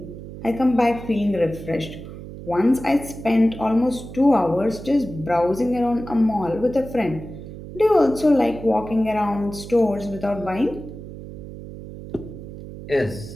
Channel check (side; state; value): right; noise; hum, 12 dB below the sound